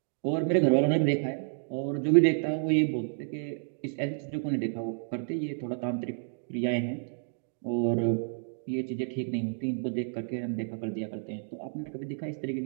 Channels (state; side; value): silent; left; digital silence